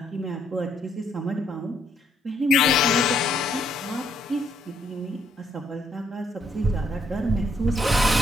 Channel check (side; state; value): both; normal; correlation 0.70